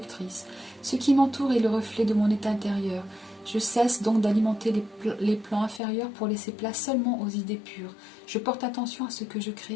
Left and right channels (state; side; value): drops out; right; at 5.8 s